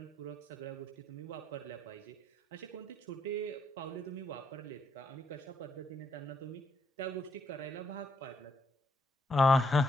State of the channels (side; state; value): both; normal; correlation 0.74